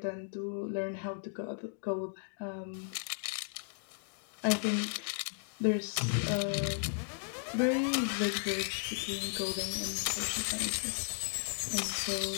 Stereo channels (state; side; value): silent; right; digital silence